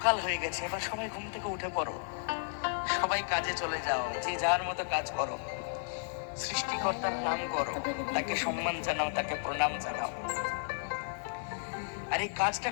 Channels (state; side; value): silent; right; digital silence